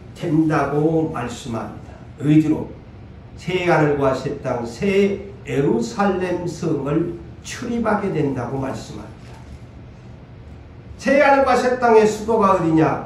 된다고 말씀합니다. 의지로 새 하늘과 새 땅, 새 예루살렘 성을 출입하게 된다고 말씀합니다. 새 하늘과 새 땅의 수도가 어디냐?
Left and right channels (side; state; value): both; identical; correlation 1.00